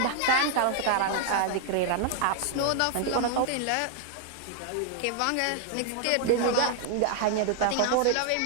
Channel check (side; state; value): both; different; correlation 0.00